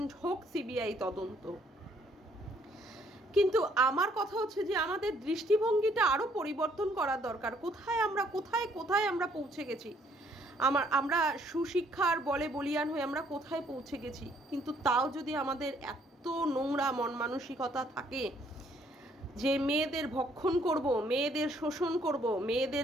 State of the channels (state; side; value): normal; both; correlation 0.65